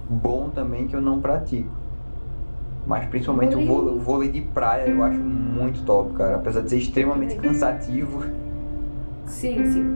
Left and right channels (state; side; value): inverted; both; correlation -1.00